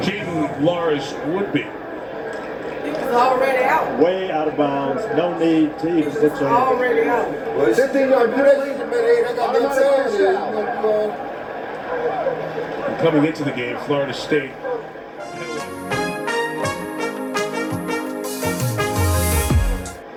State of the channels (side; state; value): both; identical; correlation 1.00